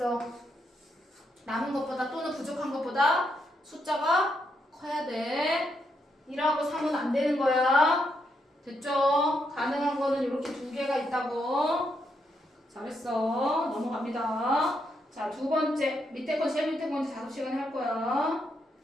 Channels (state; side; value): normal; both; correlation 0.79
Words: 남은 것보다 또는 부족한 것보다 숫자가 커야 돼. 1하고 3은 안 되는 거야. 됐죠? 가능한 거는 이렇게 두 개가 있다고. 잘했어. 넘어갑니다. 자, 두 번째. 밑에 거 제일 밑에 거 이제 작업 시간에 할 거야.